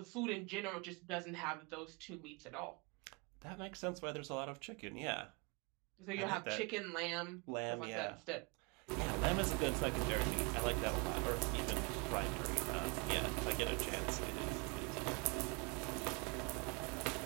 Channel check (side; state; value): left; quieter; 30.3 dB